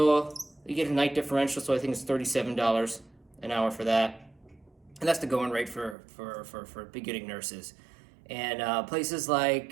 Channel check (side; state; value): left; drops out; at 6.0 s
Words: a night differential, so I think it's $37 an hour for that. And that's the going rate for beginning nurses. And places